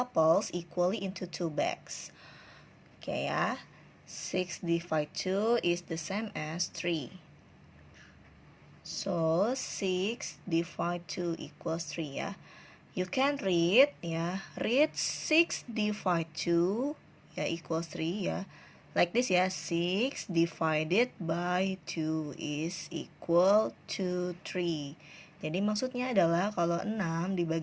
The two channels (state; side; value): identical; both; correlation 1.00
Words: equally into 2 bags. Okay ya, 6 divided 2 is the same as 3. So 6 divided 2 equals 3 ya. You can read ya. Read 6 divided 2 ya equals 3 ya. Like this ya. 6 divided by 2 is equal to 3. Jadi maksudnya adalah kalau 6